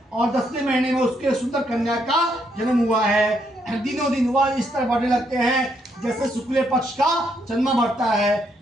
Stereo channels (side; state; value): both; normal; correlation 0.75